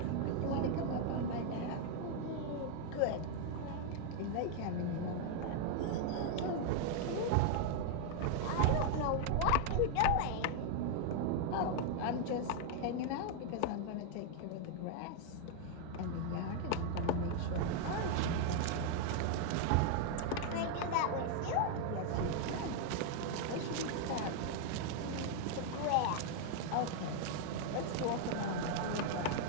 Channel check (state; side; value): different; both; correlation 0.00